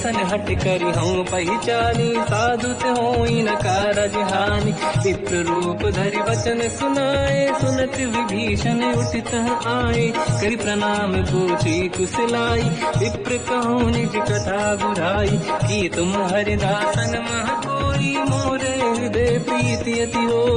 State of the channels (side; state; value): both; identical; correlation 1.00